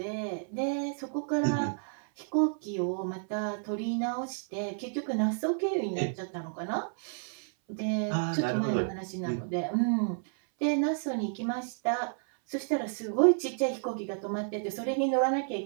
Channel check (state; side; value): silent; left; 57 dB below the other